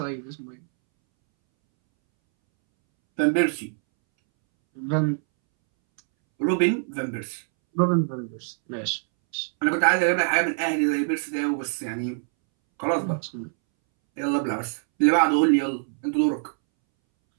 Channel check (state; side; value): silent; left; 62 dB below the other